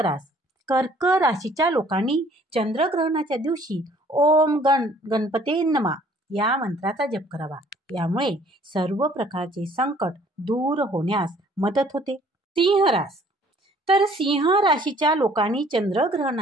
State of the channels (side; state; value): both; normal; correlation 0.58